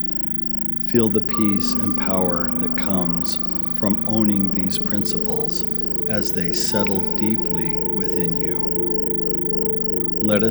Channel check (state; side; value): quieter; right; 5.1 dB